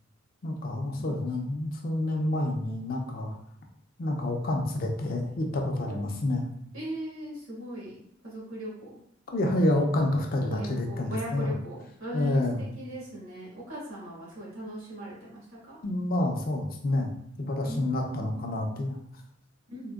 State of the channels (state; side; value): normal; both; correlation 0.72